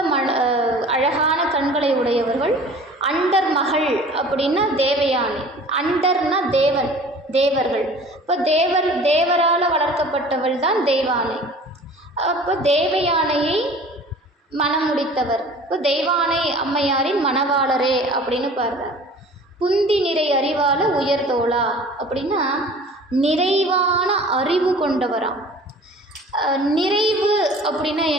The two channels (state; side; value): normal; both; correlation 0.45